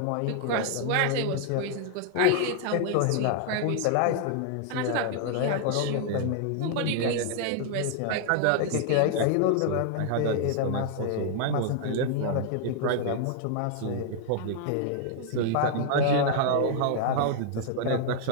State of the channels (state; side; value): different; both; correlation -0.01